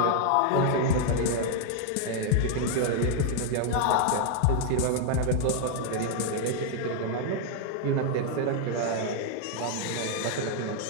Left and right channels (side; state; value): both; different; correlation 0.00